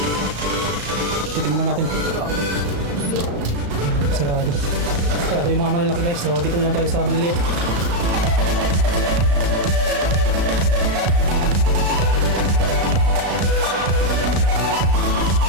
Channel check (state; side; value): late; left; 35 ms